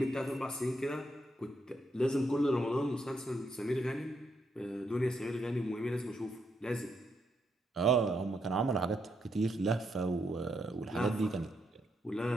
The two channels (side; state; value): both; normal; correlation 0.78